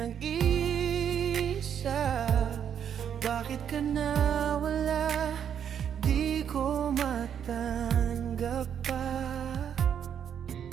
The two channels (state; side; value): quieter; left; 8.6 dB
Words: Bakit ka nawala? Di ko matanggap pa.